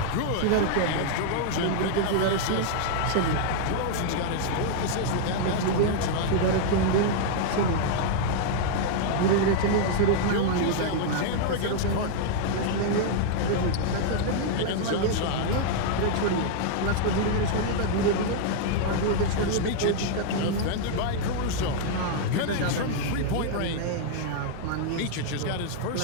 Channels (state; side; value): different; both; correlation -0.01